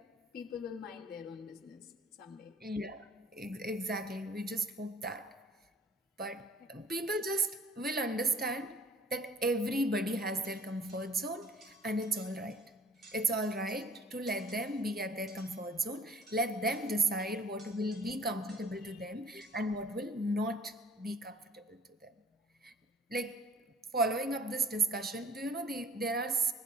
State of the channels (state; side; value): normal; both; correlation 0.53